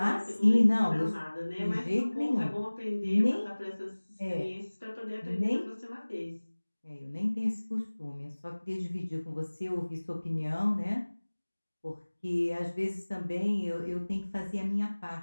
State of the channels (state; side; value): inverted; both; correlation -1.00